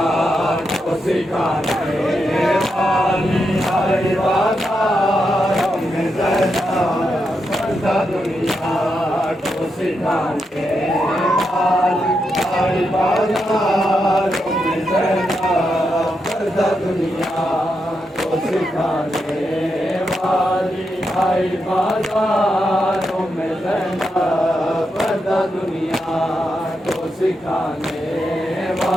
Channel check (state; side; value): normal; both; correlation 0.84